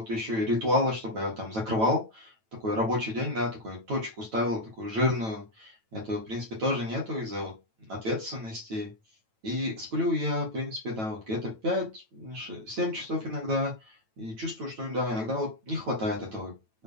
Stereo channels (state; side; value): late; left; 9.1 ms